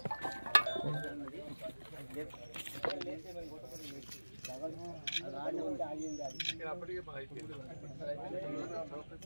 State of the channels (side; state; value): both; inverted; correlation -1.00